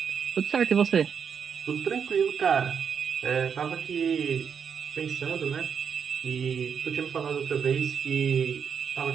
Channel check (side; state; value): left; quieter; 7.1 dB